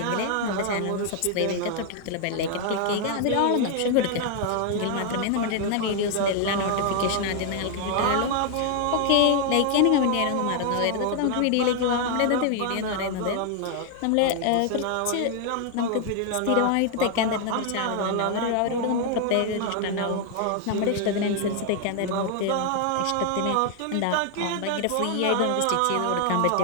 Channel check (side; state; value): both; different; correlation 0.00